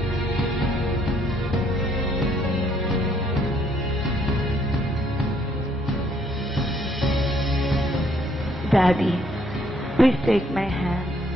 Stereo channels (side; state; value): both; normal; correlation 0.67